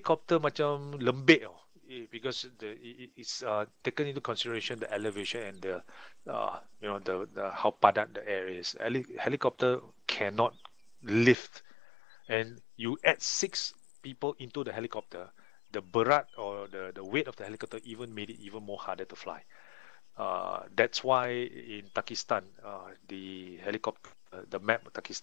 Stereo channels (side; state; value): right; drops out; at 11.4 s